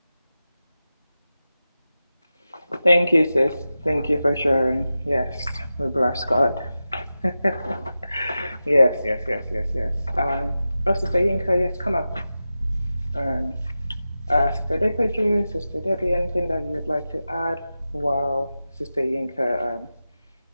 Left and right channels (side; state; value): both; inverted; correlation -0.93